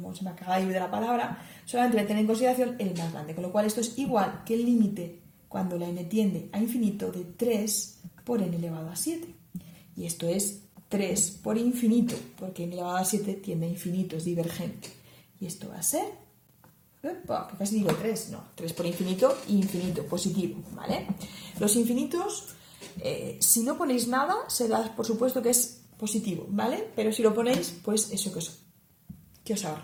se me acaba de ir de la palabra, solamente me tiene en consideración el más grande, con lo cual esto es igual que el límite cuando la n tiende a infinito de 3 por n elevado a 7. Y esto es 3 por infinito, porque n elevado a 7 tiende a infinito, es divergente. Y esto va a ser, que casi digo 3, no, 3 por infinito, infinito, positivo, ¿vale? Los infinitos, si no ponéis nada, se da por supuesto que es positivo, ¿vale? Pero si lo ponéis, pues eso que os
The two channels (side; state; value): both; identical; correlation 1.00